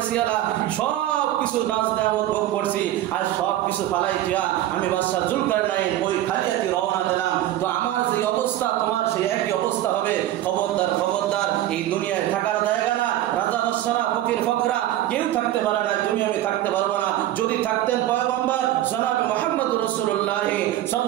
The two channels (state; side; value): quieter; left; 13.7 dB